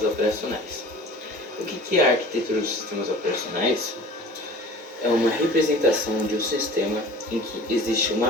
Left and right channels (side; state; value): both; normal; correlation 0.43